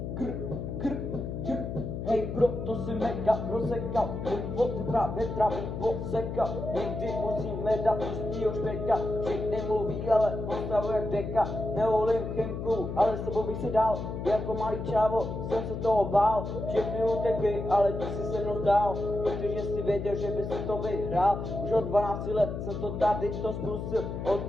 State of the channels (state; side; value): noise; left; hum, 5 dB below the sound